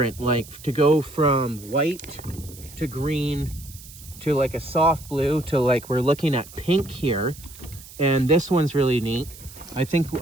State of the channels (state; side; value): noise; right; hiss, 18 dB below the sound